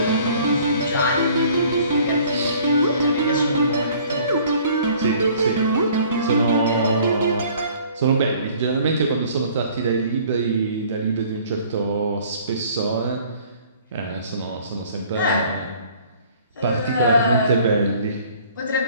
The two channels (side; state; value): both; inverted; correlation -0.54